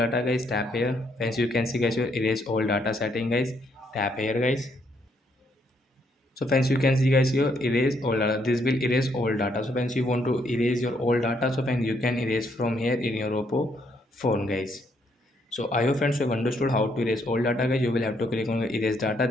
guys, tap here. Friends, you can see guys your erase all data setting guys, tap here guys. So friends, you can see guys your erase all data. This will erase all data. So friends, you want to erase your all data. So friends, you can erase from here in your Oppo phone guys. So I hope friends you have understood how to erase all data guys. You will have to click on erase data,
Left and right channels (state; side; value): normal; both; correlation 0.72